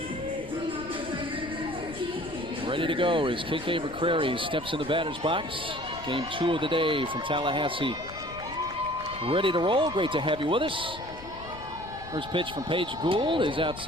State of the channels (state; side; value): noise; left; rumble, 16 dB below the sound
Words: Ready to go as KK McCrary steps in the batter's box. Game 2 of the day from Tallahassee. Ready to roll. Great to have you with us. First pitch from Paige Gould is